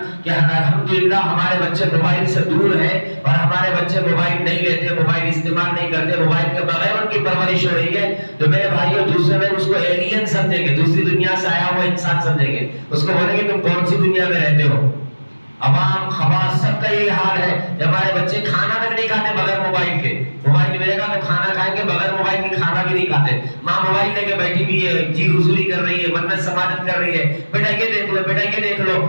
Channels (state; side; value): inverted; both; correlation -1.00